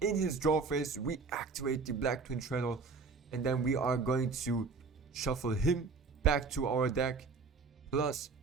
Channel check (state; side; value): quieter; left; 4.6 dB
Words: in his draw phase, we activate the Black Twin Shadow, and then we are going to shuffle him back to our deck, plus